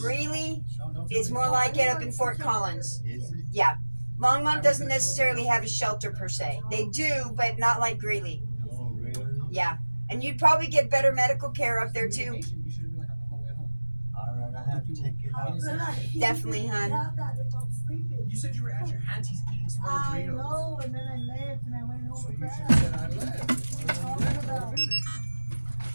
Don't tell is me more to like it up in Fort Collins. Is it? Yeah. Longmont doesn't necessarily have a shelter per se. They do, but not like Greeley. Oh, really? Yeah. And you'd probably get better medical care up there too. You should have been like, I'm on my way home. All right, I have to check it out. Definitely, hon. You said you were at your auntie's eating small I burritos. know, and then I left and I went home So with you should that. have said I left. Talking about-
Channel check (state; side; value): inverted; both; correlation -1.00